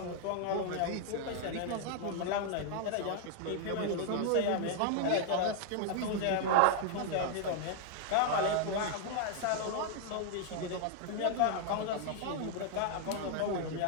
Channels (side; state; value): both; different; correlation 0.00